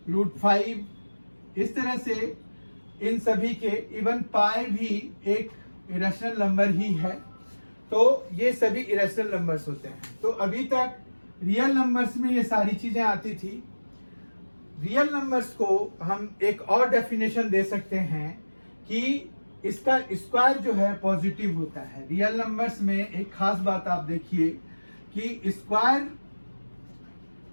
√5, इस तरह से इन सभी के इवन पाई भी एक इरेशनल नंबर ही है। तो ये सभी इरेशनल नंबर्स होते हैं। तो अभी तक रियल नंबर्स में ये सारी चीजें आती थी। रियल नंबर्स को हम एक और डेफिनेशन दे सकते हैं कि इसका स्क्वायर जो है पॉजिटिव होता है। रियल नंबर्स में एक खास बात आप देखिए कि square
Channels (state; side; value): inverted; both; correlation -1.00